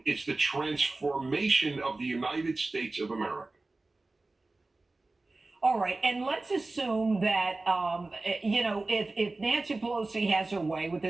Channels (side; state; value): left; quieter; 3.2 dB